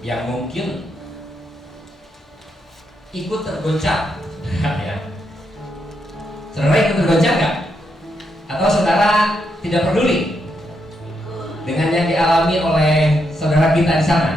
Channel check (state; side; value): normal; both; correlation 0.81